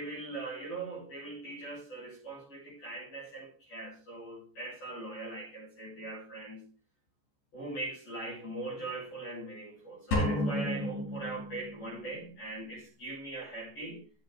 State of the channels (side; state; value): right; late; 14 ms